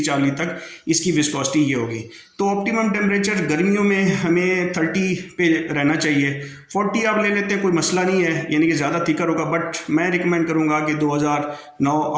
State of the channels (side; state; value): both; identical; correlation 1.00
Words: चार्ली तक इसकी विस्कोसिटी ये होगी। तो ऑप्टिमम टेम्परेचर गर्मियों में हमें 30 पे रहना चाहिए। 40 आप ले लेते हैं, कोई मसला नहीं है, यानी कि ज़्यादा थिकर होगा। बट मैं रिकमेंड करूँगा कि 2009,